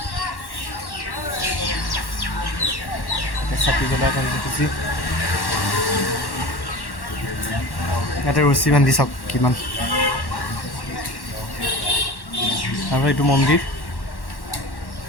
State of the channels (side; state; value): right; late; 1.1 ms